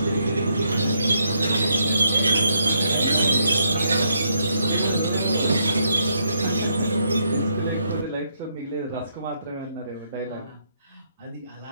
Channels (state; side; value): inverted; both; correlation -0.76